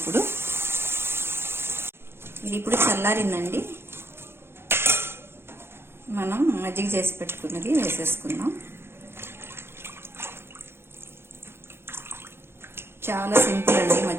ఇది ఇప్పుడు చల్లారిందండి. మనం మజ్జిగ చేసి పెట్టుకున్నది వేసేసుకుందాం. చాలా సింపుల్ అండి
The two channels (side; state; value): left; late; 0.11 ms